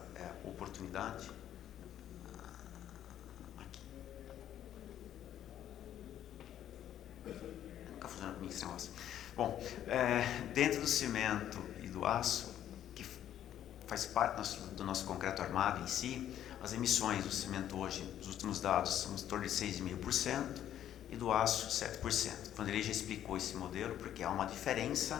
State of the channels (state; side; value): quieter; right; 11.0 dB